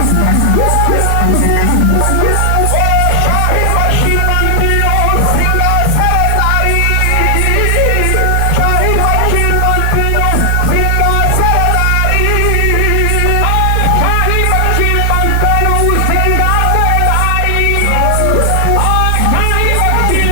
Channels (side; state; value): both; different; correlation 0.00